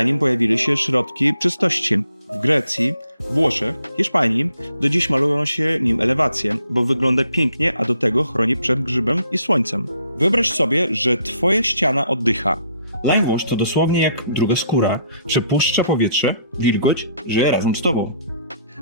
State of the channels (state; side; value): inverted; both; correlation -0.67